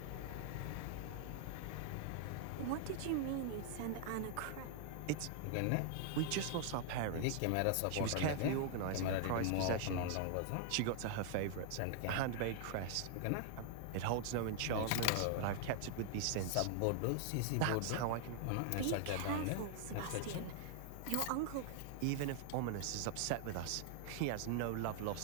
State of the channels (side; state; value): both; different; correlation 0.00